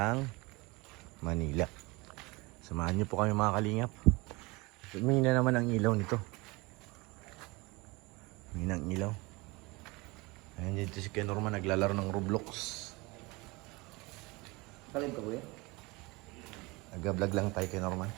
Manila. Samahan niyo po kami mga kalingap. Umina naman ang ilaw nito. Umina ang ilaw. Ayan dito si Ken Norman naglalaro ng Roblox. Kalim ka kuya? Nag-vlog lang tayo Ken Norman.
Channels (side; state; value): left; quieter; 24.7 dB